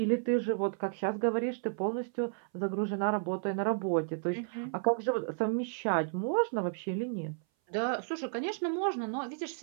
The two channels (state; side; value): silent; left; 56 dB below the other